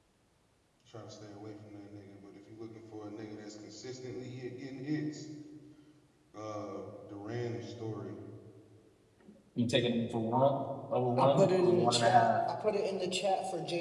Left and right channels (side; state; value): both; identical; correlation 1.00